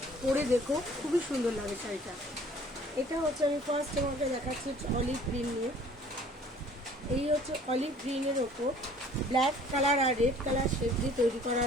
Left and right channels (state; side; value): normal; both; correlation 0.53